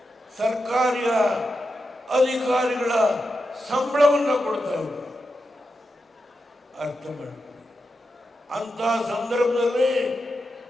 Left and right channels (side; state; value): both; normal; correlation 0.88